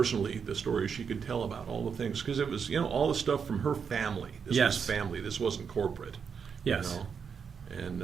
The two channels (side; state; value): left; quieter; 6.5 dB